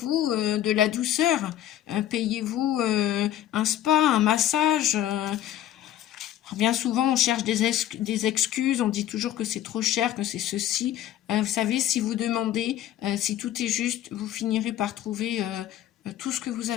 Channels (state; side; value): quieter; right; 12.1 dB